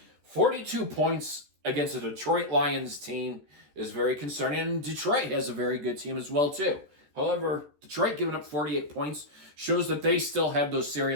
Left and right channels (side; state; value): left; late; 14 ms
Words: 42 points against a Detroit Lions team is very concerning, and Detroit has a very good team as well, too. However, Detroit giving up 48 points shows that they still have those